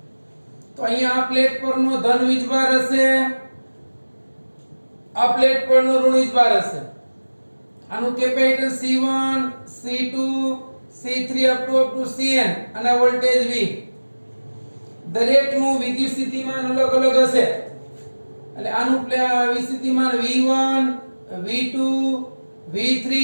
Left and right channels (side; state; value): both; inverted; correlation -1.00